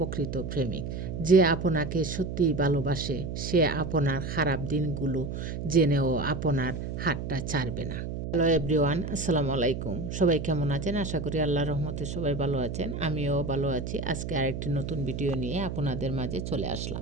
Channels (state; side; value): noise; right; hum, 5 dB below the sound